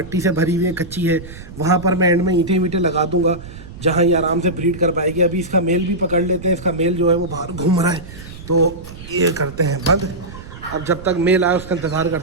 से भरी हुई है, कच्ची है। वहाँ पर मैं एंड में ईंटें वीटें लगा दूंगा, जहाँ ये आराम से ब्रीड कर पाएगी। अभी इसका मेल भी पकड़ लेते हैं, इसका मेल जो है वो बाहर घूम रहा है, तो ये करते हैं बंद। अब जब तक मेल आए उसका इंतज़ार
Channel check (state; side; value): noise; right; rumble, 15 dB below the sound